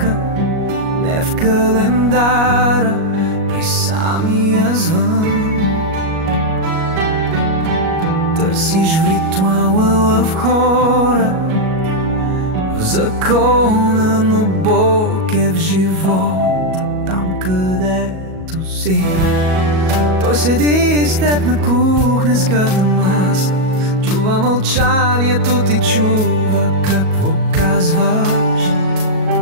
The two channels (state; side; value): late; left; 37 ms